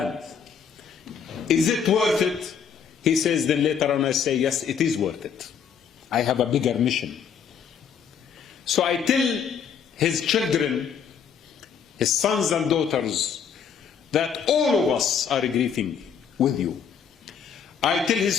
Is it worth it? He says, then later on I say, yes, it is worth it. I have a bigger mission. So I tell his children, his sons and daughters, that all of us are grieving with you. I tell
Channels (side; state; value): right; quieter; 7.2 dB